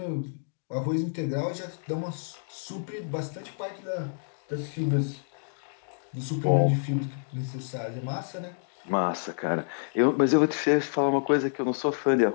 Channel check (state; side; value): silent; right; digital silence